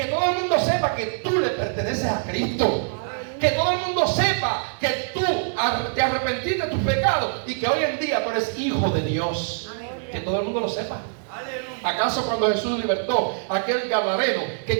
todo el mundo sepa que tú le perteneces a Cristo. Que todo el mundo sepa que tú te arrepentiste de tus pecados y que hoy en día tú eres hijo de Dios. Que todo el mundo lo sepa. ¿Acaso cuando Jesús libertó a aquel gadareno que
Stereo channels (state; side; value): silent; left; digital silence